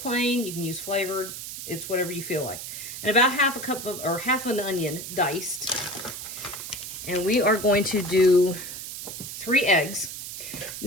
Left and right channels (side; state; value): right; noise; hiss, 8 dB below the sound